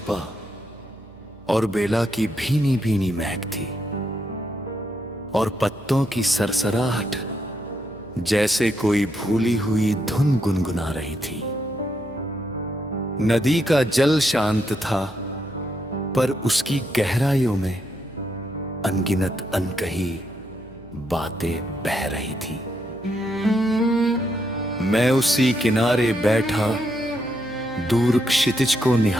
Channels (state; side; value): noise; right; hum, 23 dB below the sound